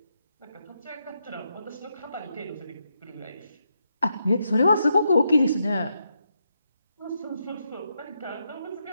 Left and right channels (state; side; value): inverted; both; correlation -0.82